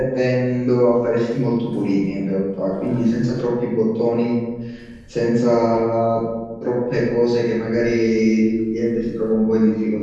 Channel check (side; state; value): both; identical; correlation 1.00